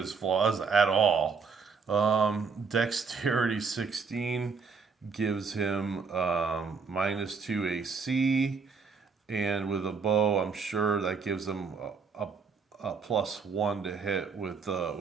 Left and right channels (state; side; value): quieter; left; 5.2 dB